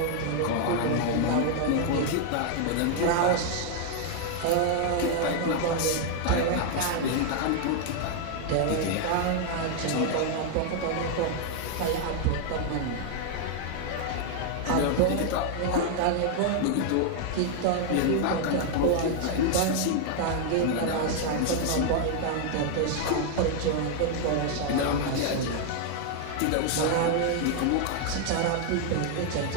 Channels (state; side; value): different; both; correlation 0.00